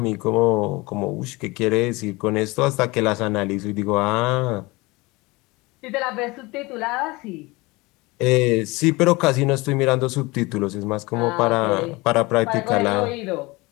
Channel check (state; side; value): quieter; right; 23.3 dB